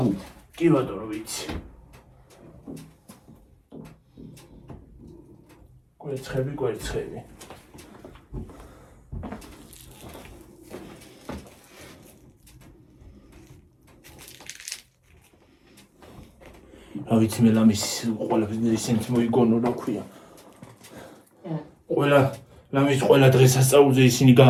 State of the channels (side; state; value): both; identical; correlation 1.00